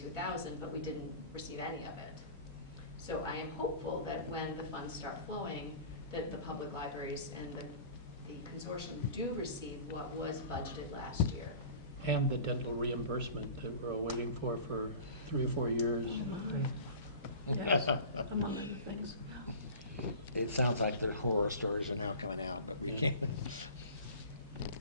but we didn't receive any of it. So I am hopeful that when the funds start flowing, that the public libraries and the consortium do receive what was budgeted last year. And the dental reimbursement that we're waiting for 3 or 4 years. Yes, among other things. It sounds like their horror stories are now coming out, but we can't.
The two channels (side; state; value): both; inverted; correlation -0.40